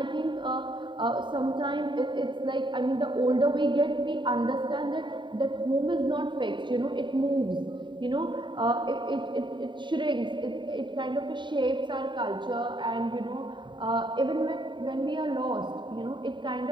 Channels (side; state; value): left; late; 0.23 ms